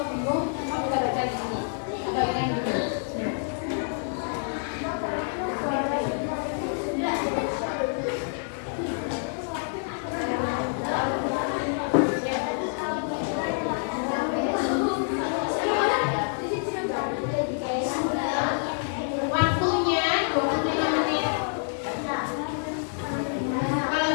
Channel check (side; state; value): right; silent; 60 dB below the other